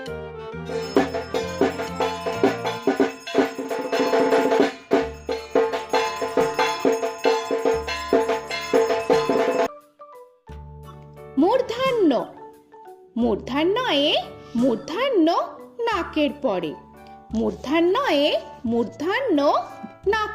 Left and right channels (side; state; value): both; identical; correlation 1.00